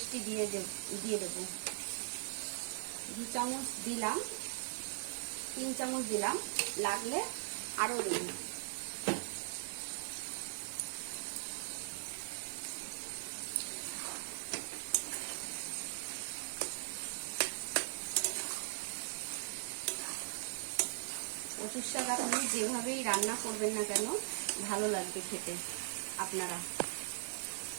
দিয়ে দেবো। 2 চামচ দিলাম, 3 চামচ দিলাম, লাগলে আরো দেব। কচুর শাক আপনি যেভাবেই রান্না করবেন না কেন ভালো লাগবে খেতে। আপনারা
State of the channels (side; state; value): left; silent; 51 dB below the other